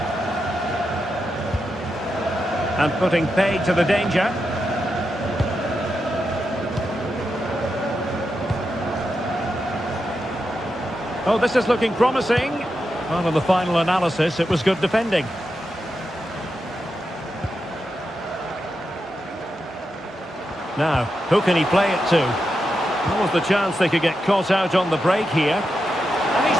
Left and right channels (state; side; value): normal; both; correlation 0.87